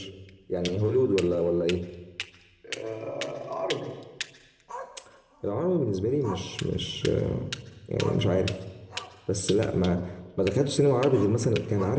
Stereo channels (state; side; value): identical; both; correlation 1.00